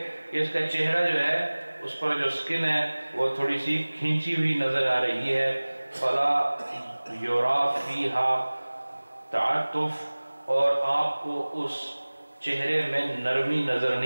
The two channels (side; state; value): both; inverted; correlation -1.00